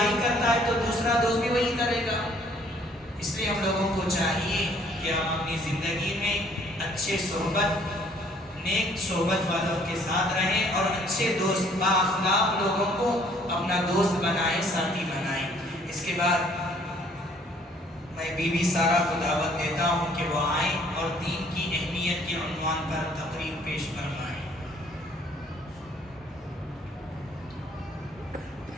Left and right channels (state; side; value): normal; both; correlation 0.60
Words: کرتا ہے تو دوسرا دوست بھی وہی کرے گا۔ اس لیے ہم لوگوں کو چاہیے کہ ہم اپنی زندگی میں اچھے صحبت، نیک صحبت والوں کے ساتھ رہیں اور اچھے دوست، با اخلاق لوگوں کو اپنا دوست بنائیں، ساتھی بنائیں۔ اس کے بعد میں بی بی سارہ کو دعوت دیتا ہوں کہ وہ آئیں اور دین کی اہمیت کے عنوان پر تقریر پیش فرمائیں۔